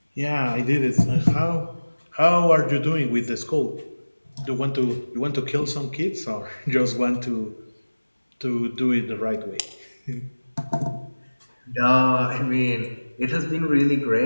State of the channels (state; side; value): inverted; both; correlation -1.00